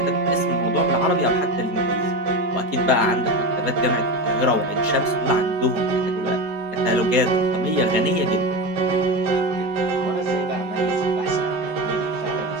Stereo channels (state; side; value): late; left; 4.3 ms